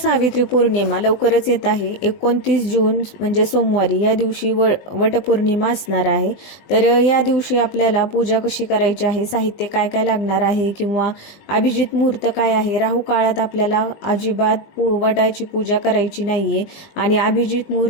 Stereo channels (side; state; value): right; late; 20 ms